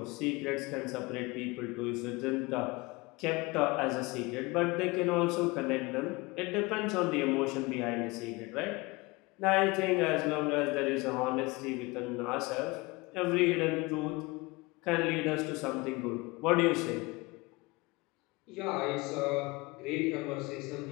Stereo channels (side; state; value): right; quieter; 24.1 dB